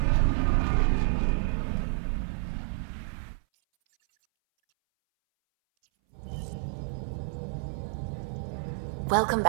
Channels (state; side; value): silent; left; 58 dB below the other